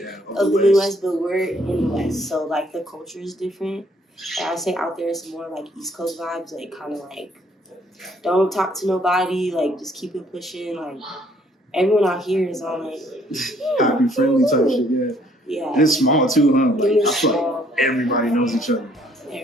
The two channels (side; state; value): both; normal; correlation 0.64